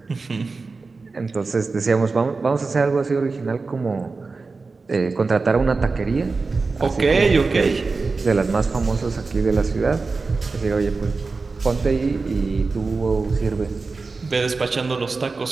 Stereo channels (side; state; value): left; quieter; 4.1 dB